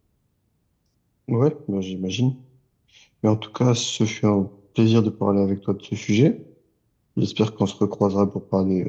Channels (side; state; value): both; identical; correlation 1.00